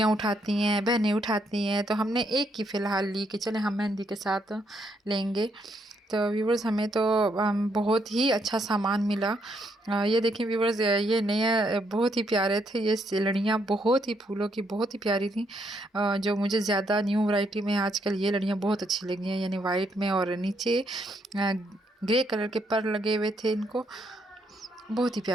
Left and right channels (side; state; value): both; normal; correlation 0.75